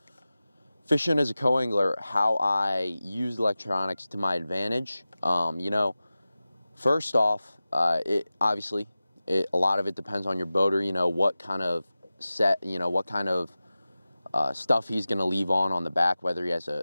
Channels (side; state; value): both; inverted; correlation -0.96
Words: fishing as a co-angler, how I use electronics to my advantage. First off, a lot of it depends on your boater, what kind of stuff he's going to leave on the back, whether he has